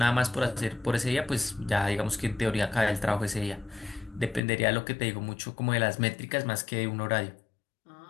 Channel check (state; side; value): drops out; right; at 4.4 s